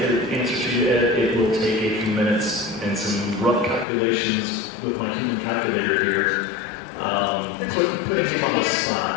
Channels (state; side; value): drops out; right; at 3.9 s